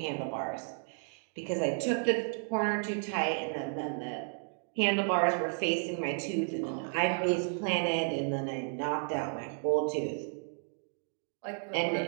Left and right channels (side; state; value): left; silent; 56 dB below the other